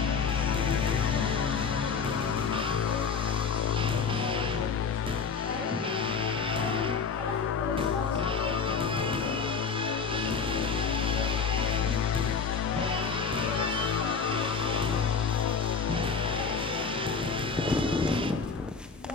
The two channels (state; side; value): quieter; right; 5.6 dB